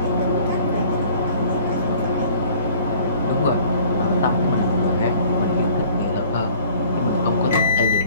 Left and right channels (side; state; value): both; inverted; correlation -0.53